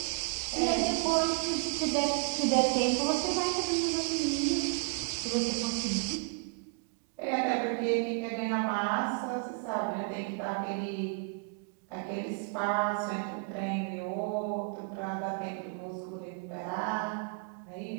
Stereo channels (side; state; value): left; quieter; 34.7 dB